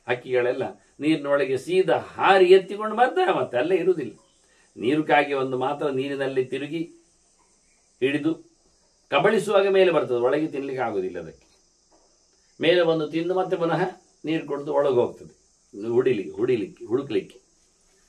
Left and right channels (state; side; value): identical; both; correlation 1.00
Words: ಹಕ್ಕಿಗಳೆಲ್ಲ ನೀರಿನೊಳಗೆ ಸೀದಾ ಹಾರಿ ಎತ್ತಿಕೊಂಡು ಬರ್ತಾರೆ. ಮತ್ತೆ ಅಲ್ಲೇ ಇರುವುದಿಲ್ಲ. ನೀರು ಕಾಗಿ ಒಂದು ಮಾತ್ರ ನೀರಿನಲ್ಲಿ ತಿರುಗಿ ಹಿಡಿದು ಕಬಳಿಸುವಾಗ ಮೇಲೆ ಬರ್ತದೆ, ಒಳಗೆ ತಿನ್ನಲಿಕ್ಕೆ ಆಗೋದಿಲ್ಲ. ಅದಕ್ಕೆ ಮೇಲೆ ಬಂದು ತಿಂದು ಮತ್ತೆ ಪುನಃ ನೀರು ಕೊಡ್ದು ಒಳಗೆ ಹೋಗ್ತದೆ ಹುಡುಕ್ಲಿಕ್ಕೆ.